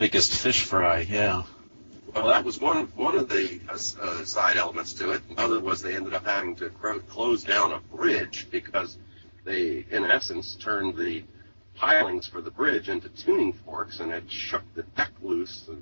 fish fry, yeah. Well, that was one of the side elements to it. Another was they ended up having to close down a bridge because they, in essence, turned the pilings for the bridge into tuning forks, and it shook the deck loose. The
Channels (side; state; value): both; inverted; correlation -1.00